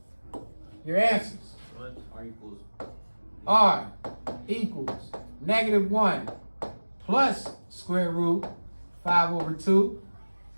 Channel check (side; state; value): both; inverted; correlation -1.00